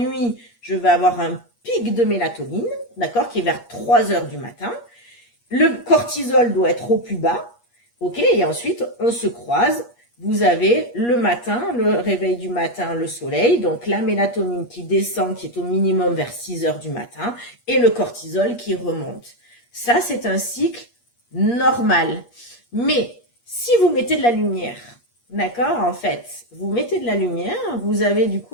je vais avoir un pic de mélatonine, d'accord, qui est vers 3 heures du matin. Le cortisol doit être au plus bas, ok, et ensuite on se croise. Vous avez le matin, le réveil du matin, le soleil, donc la mélatonine qui descend, qui est au minimum vers 6 heures du matin, et le cortisol qui remonte. Ça, c'est un cycle normal. Mais si vous mettez de la lumière, d'accord, en fait, vous mettez de la lumière, vous avez du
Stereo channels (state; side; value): late; right; 8.4 ms